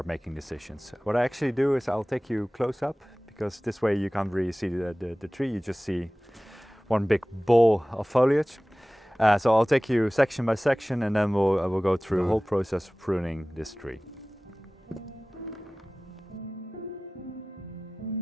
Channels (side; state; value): both; normal; correlation 0.98